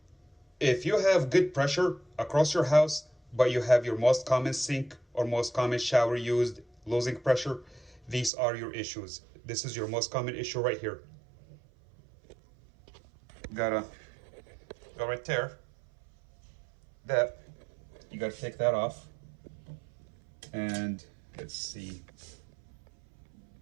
if you have good pressure across your house, but you have your most common sink or most common shower used losing pressure, these are your issues. This is your most common issue right here. Gotta go right there. That you gotta take that off, and let's see.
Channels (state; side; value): drops out; left; at 8.3 s